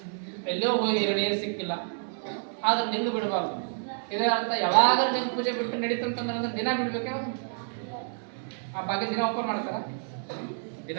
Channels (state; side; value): silent; left; digital silence